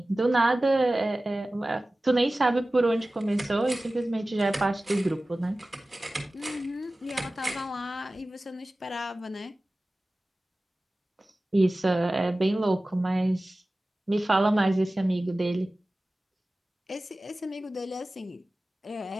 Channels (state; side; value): normal; both; correlation 0.97